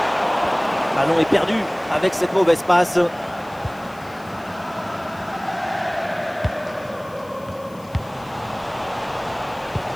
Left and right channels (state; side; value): noise; left; hiss, 25 dB below the sound